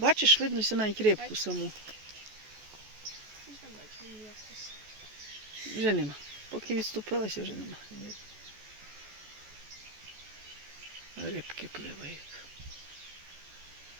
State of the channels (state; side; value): late; left; 14 ms